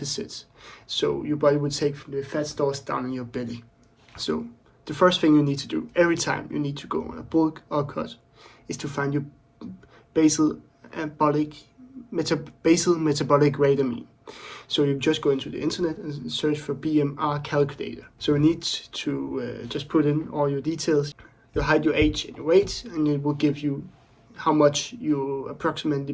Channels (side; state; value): both; identical; correlation 1.00